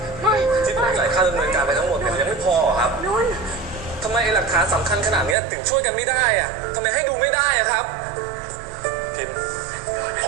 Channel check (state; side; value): drops out; left; at 5.4 s